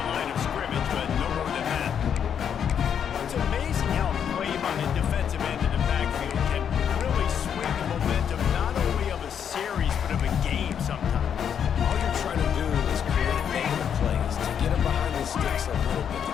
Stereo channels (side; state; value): right; quieter; 8.2 dB